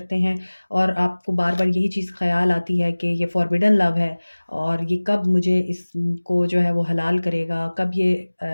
हैं, और आपको बार-बार यही चीज़ ख़्याल आती है कि ये फॉरबिडन लव है और ये कब मुझे इसको जो है वो हलाल करेगा, कब ये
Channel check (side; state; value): both; inverted; correlation -1.00